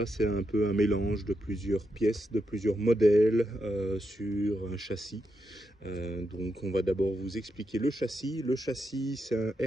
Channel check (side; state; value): both; normal; correlation 0.84